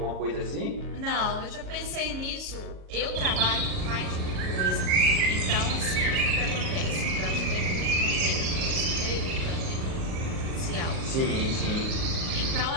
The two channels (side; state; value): left; late; 38 ms